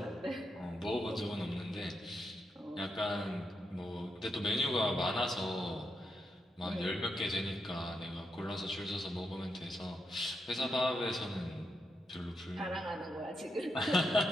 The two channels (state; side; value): normal; both; correlation 0.83